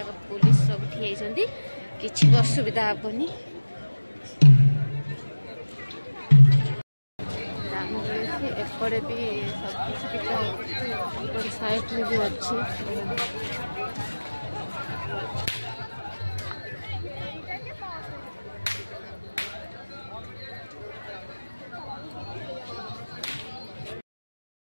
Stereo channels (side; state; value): both; inverted; correlation -1.00